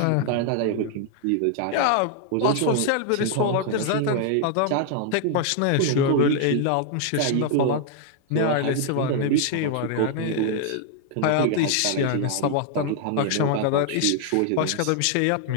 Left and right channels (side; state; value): both; different; correlation 0.00